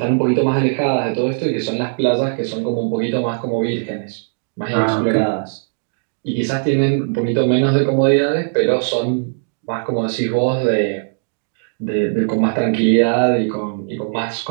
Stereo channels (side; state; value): left; silent; digital silence